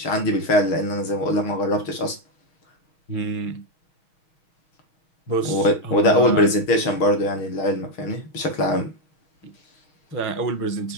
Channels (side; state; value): right; late; 6.3 ms